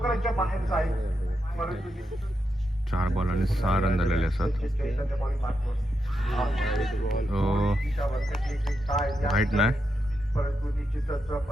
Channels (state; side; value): normal; both; correlation 0.85